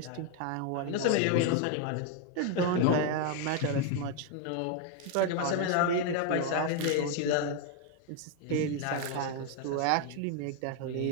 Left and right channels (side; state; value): both; different; correlation 0.01